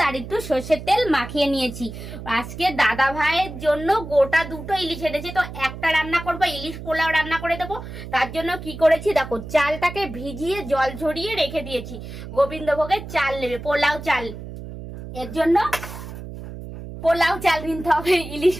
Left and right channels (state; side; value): noise; right; hum, 11 dB below the sound